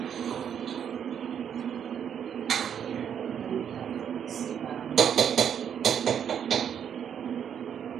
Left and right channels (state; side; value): quieter; left; 8.4 dB